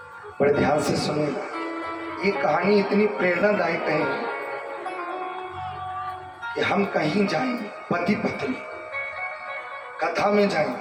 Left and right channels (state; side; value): identical; both; correlation 1.00